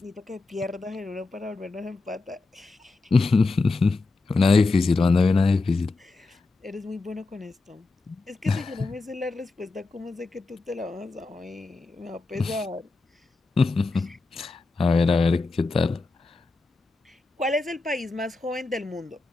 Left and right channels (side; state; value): right; quieter; 3.6 dB